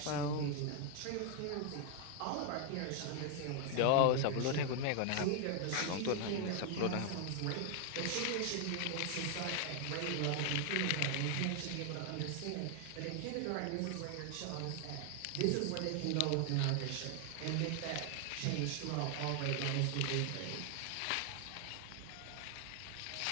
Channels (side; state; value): both; different; correlation 0.00